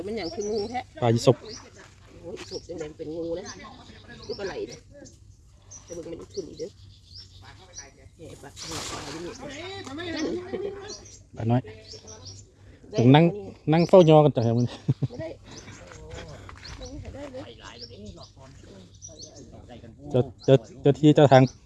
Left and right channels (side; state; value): both; identical; correlation 1.00